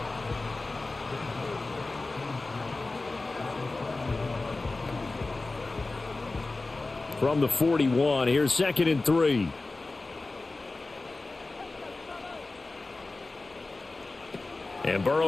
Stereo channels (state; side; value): quieter; right; 3.3 dB